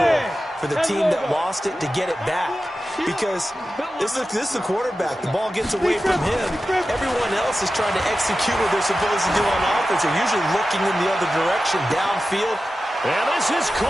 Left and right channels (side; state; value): both; normal; correlation 0.93